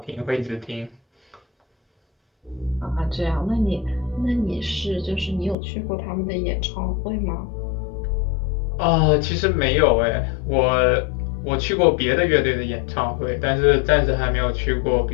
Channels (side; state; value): right; drops out; at 5.6 s